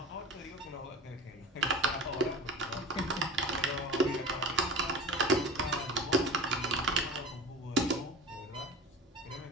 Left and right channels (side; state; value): both; normal; correlation 0.34